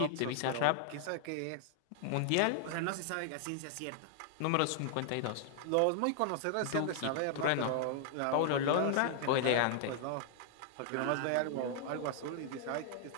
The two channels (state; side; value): different; both; correlation 0.00